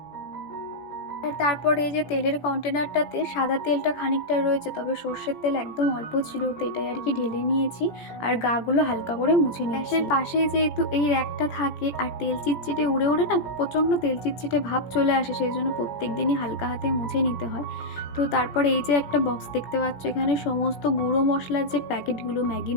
আর তারপরে এই যে তেলের কন্টেনারটাতে সাদা তেলটা খানিকটা রয়েছে, তবে সর্ষের তেল একদম অল্প ছিল, তো এটাই আর কি ঢেলে নিয়েছি আর গাগুলো হালকা করে মুছে নিয়েছি। গ্যাসের পাশেই যেহেতু এই র্যাকটা থাকে আর তেল চিটচিটে উড়ে উড়ে না প্রচণ্ড তেল চিটচিটে ভাব চলে আসে, সেই জন্য প্রত্যেক দিনই হালকা হাতে মুছে নিতে হয়। তো তারপরে এই যে একটা বক্স দেখতে পাচ্ছ, এখানে সমস্ত গুঁড়ো মশলার যে প্যাকেটগুলো, ম্যাগি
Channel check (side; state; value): right; late; 17 ms